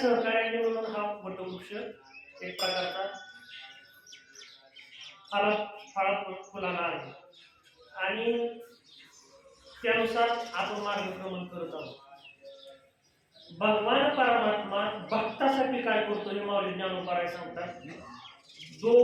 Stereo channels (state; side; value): identical; both; correlation 1.00